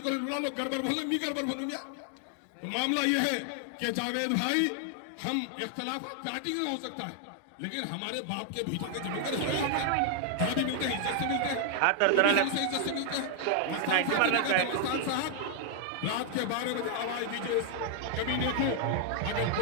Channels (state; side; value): different; both; correlation 0.00